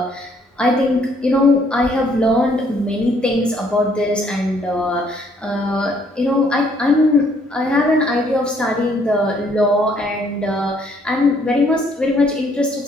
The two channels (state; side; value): normal; both; correlation 0.66